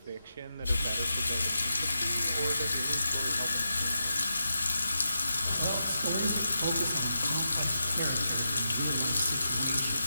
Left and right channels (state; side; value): inverted; both; correlation -0.88